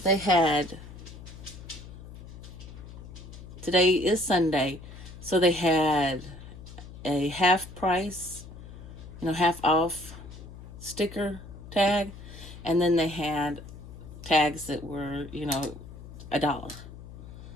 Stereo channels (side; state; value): left; noise; hum, 15 dB below the sound